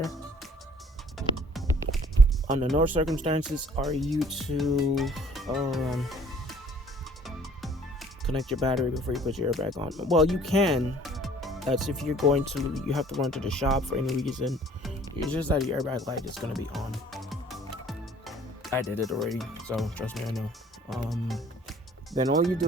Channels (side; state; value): both; normal; correlation 0.55